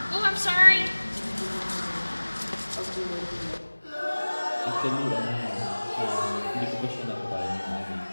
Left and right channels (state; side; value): inverted; both; correlation -1.00